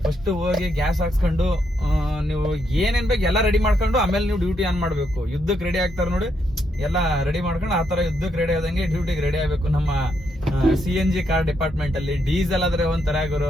ಫಸ್ಟ್ ಹೋಗಿ ಗ್ಯಾಸ್ ಹಾಕ್ಸ್ಕೊಂಡು ನೀವು ಏನೇನ್ ಬೇಕು ಎಲ್ಲ ರೆಡಿ ಮಾಡ್ಕೊಂಡು ಆಮೇಲೆ ನೀವು ಡ್ಯೂಟಿ ಆನ್ ಮಾಡ್ಬೇಕು. ಯುದ್ಧಕ್ಕೆ ರೆಡಿ ಆಗ್ತಾರೆ ನೋಡಿ, ಎಲ್ಲ ರೆಡಿ ಮಾಡ್ಕೊಂಡು ಆ ತರ ಯುದ್ಧಕ್ಕೆ ರೆಡಿ ಆದಂಗೆ ಡ್ಯೂಟಿಗೆ ರೆಡಿ ಆಗ್ಬೇಕು. ನಮ್ಮ CNG ಕಾರ್ ಡಿಪಾರ್ಟ್ಮೆಂಟ್ ಅಲ್ಲಿ ಡೀಸೆಲ್ ಆದ್ರೆ ಒಂಥರ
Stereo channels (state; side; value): normal; both; correlation 0.78